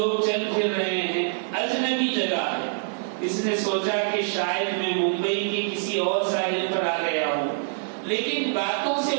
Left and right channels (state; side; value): silent; left; digital silence